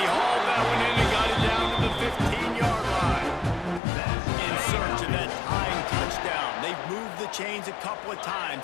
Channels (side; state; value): right; drops out; at 3.8 s